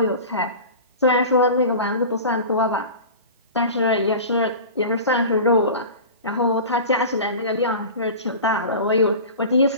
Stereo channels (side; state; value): both; inverted; correlation -0.34